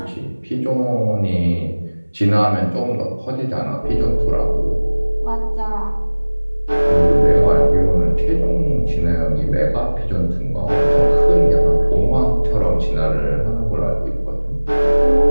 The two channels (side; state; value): both; inverted; correlation -1.00